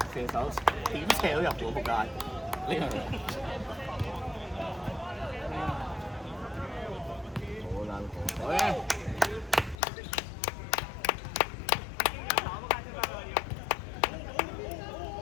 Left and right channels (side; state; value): right; drops out; at 9.8 s